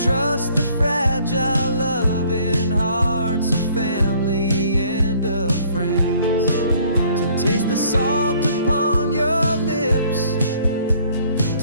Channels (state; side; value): inverted; both; correlation -0.59